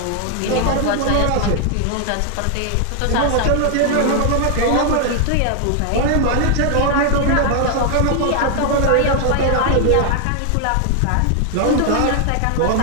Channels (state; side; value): different; both; correlation 0.00